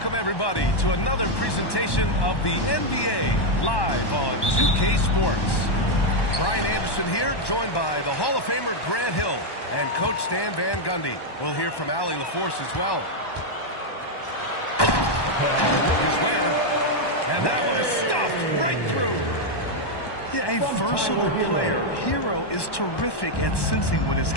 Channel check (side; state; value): right; late; 1.1 ms